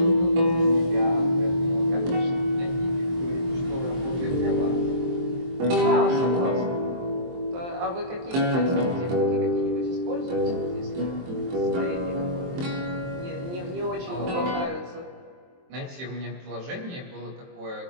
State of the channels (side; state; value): left; late; 23 ms